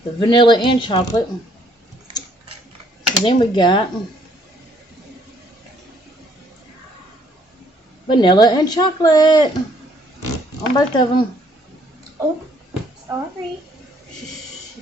vanilla and chocolate. So then we got vanilla and chocolate on both of them. Oh, sorry.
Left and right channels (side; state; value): both; normal; correlation 0.65